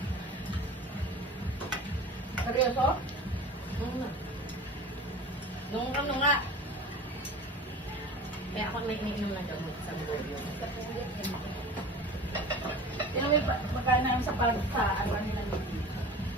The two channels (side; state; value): both; normal; correlation 0.37